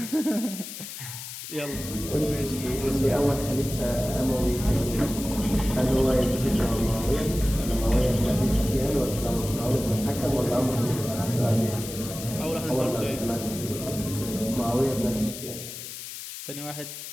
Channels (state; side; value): noise; left; hiss, 10 dB below the sound